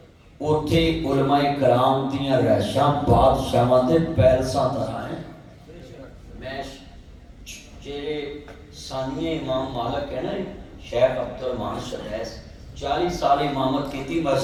اوتھے علماء کرام دیاں رہائشاں بادشاہاں دے پیلساں طرح ہیں میں جڑے ثانیہ امام مالک ہے نا شیخ عبد الرحمن سدیس 40 سال امامت کیتی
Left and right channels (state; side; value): identical; both; correlation 1.00